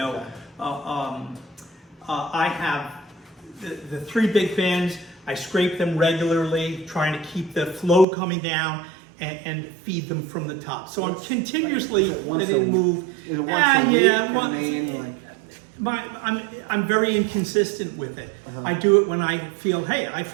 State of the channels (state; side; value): drops out; left; at 8.1 s